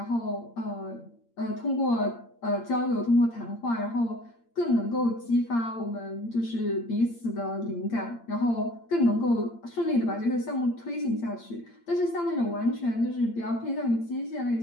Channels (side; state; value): right; late; 8.7 ms